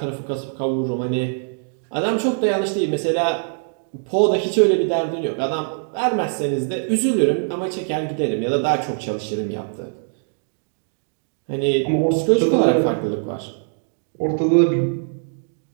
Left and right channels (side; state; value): left; silent; digital silence